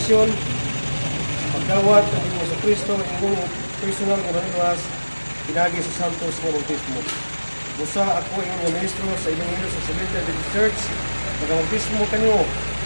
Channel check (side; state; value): both; inverted; correlation -1.00